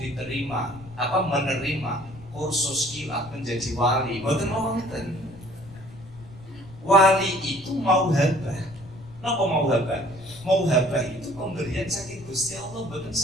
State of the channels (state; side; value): noise; left; rumble, 19 dB below the sound